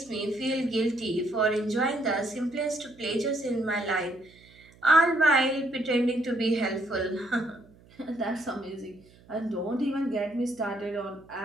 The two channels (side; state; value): right; noise; hum, 26 dB below the sound